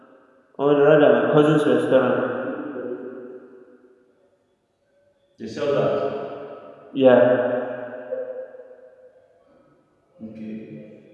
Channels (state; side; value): identical; both; correlation 1.00